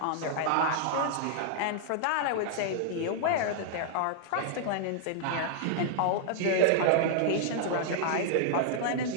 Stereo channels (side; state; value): both; different; correlation -0.01